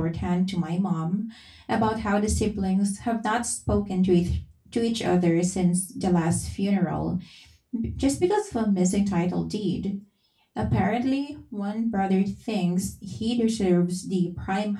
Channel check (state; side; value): identical; both; correlation 1.00